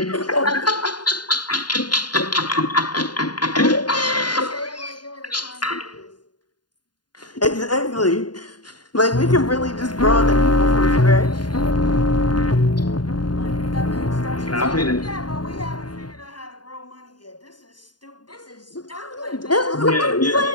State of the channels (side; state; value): right; late; 0.70 ms